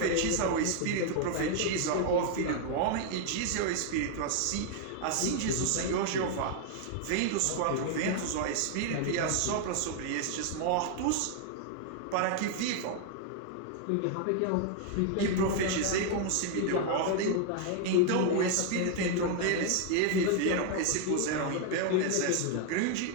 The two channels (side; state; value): both; different; correlation 0.00